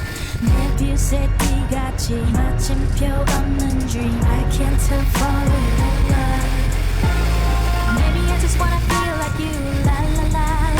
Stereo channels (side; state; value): both; identical; correlation 1.00